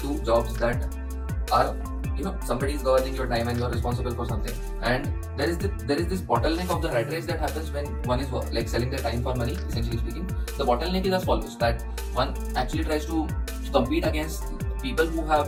jobs that are, somebody is governing your time and you are responsible for something. And there is this bottleneck of the rat race that happens when one is like selling their time for money. Essentially speaking, the bottleneck is as follows: that one actually tries to compete against people who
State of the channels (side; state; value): both; identical; correlation 1.00